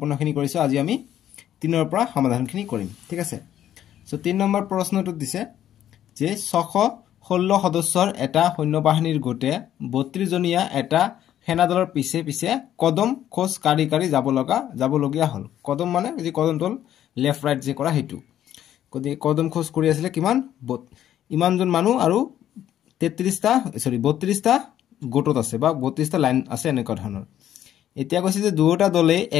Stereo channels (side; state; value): right; quieter; 11.3 dB